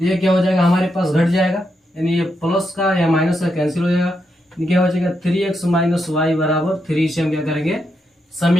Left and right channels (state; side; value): normal; both; correlation 0.82